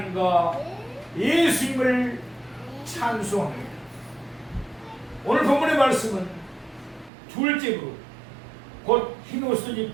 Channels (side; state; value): left; drops out; at 7.1 s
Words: 예수님을 찬송합니다. 오늘 본문의 말씀은 둘째 부류, 곧 흰 옷을